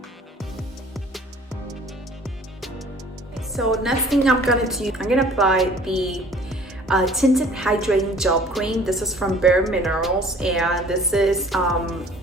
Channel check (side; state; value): both; normal; correlation 0.51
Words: So next thing I'm gonna do, I'm gonna apply the tinted hydrating gel cream. This is from Bare Minerals, and this is